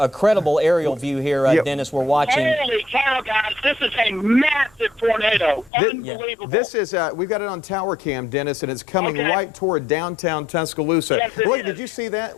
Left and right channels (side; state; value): right; drops out; at 5.7 s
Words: aerial view here, Dennis. We're watching. Holy cow, guys! This is a massive tornado. Unbelievable. This is we've got it on tower cam, Dennis, and it's coming right toward downtown Tuscaloosa. Yes, Look, did you see that?